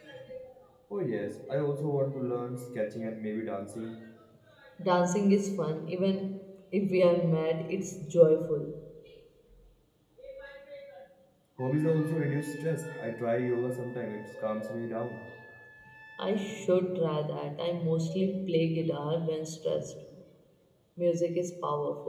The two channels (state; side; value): identical; both; correlation 1.00